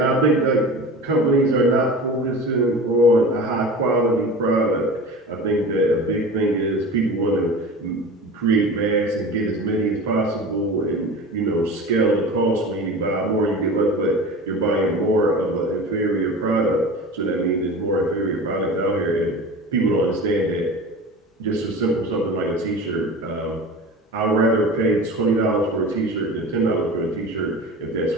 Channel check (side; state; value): both; normal; correlation 0.34